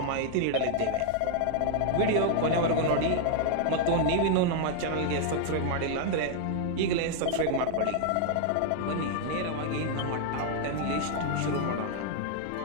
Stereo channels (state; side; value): different; both; correlation 0.00